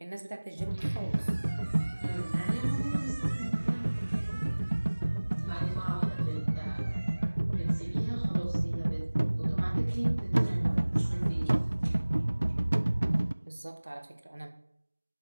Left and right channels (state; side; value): inverted; both; correlation -1.00